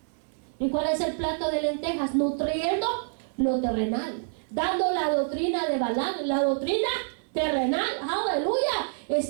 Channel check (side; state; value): left; silent; digital silence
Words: ¿Y cuál es el plato de lentejas? Nutriendo lo terrenal, dando la doctrina de Balaam, la doctrina terrenal. Aleluya.